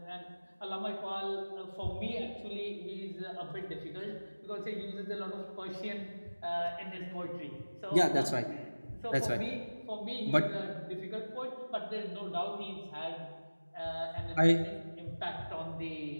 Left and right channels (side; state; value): both; inverted; correlation -1.00